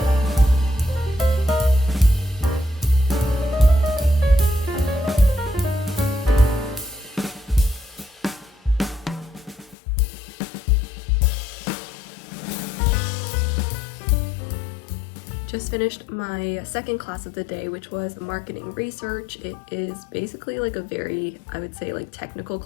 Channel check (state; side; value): drops out; right; at 9.8 s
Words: Just finished my second class of the day, which was marketing research. It is basically like a very, I would say, like technical